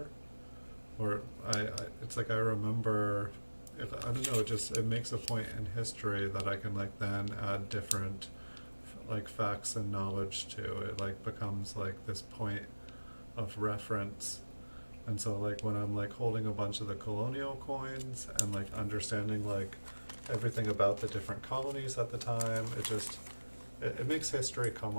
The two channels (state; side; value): inverted; both; correlation -1.00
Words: or it's like I remember. I don't know. It makes a point in history that I can then add different facts and knowledge to. It becomes this point of reference. And so when I'm holding a bunch of the colonial coins and understanding everything about the different colonies at the time, it makes history come